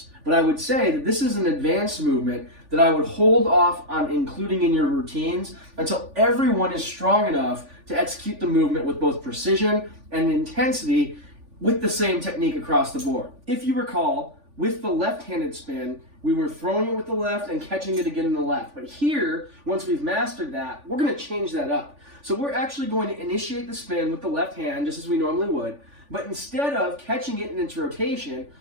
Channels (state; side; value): late; left; 3.5 ms